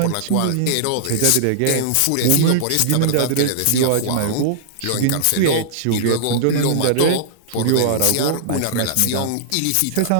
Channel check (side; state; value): both; different; correlation -0.01